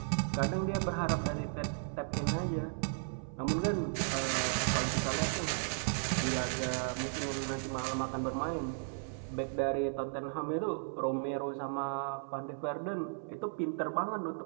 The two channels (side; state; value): left; silent; 54 dB below the other